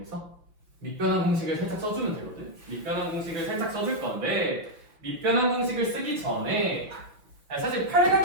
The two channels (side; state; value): left; late; 5.7 ms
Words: 밑변환 공식을 살짝 써주면 되거든? 밑변환 공식을 살짝 써줄 건데, 밑변환 공식을 쓰기 전에 사실 8